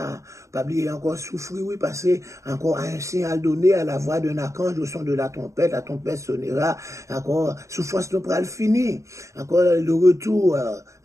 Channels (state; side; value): late; left; 0.15 ms